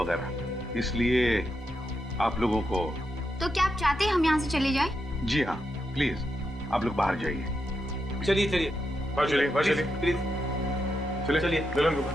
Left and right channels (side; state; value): both; normal; correlation 0.84